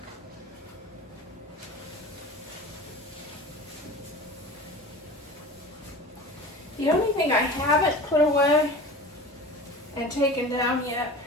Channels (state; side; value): normal; both; correlation 0.36